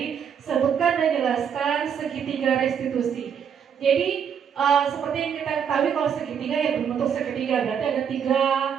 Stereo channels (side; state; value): left; quieter; 7.7 dB